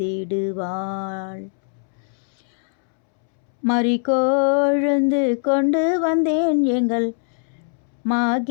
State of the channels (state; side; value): silent; right; 65 dB below the other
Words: மறிகொழுந்து கொண்டு வந்தேன் எங்கள்